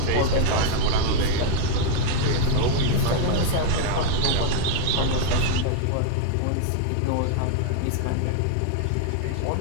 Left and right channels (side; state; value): both; different; correlation 0.00